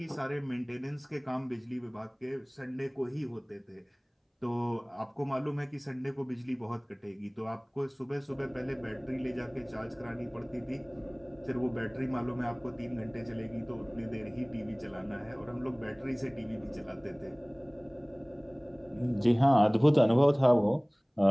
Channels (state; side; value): identical; both; correlation 1.00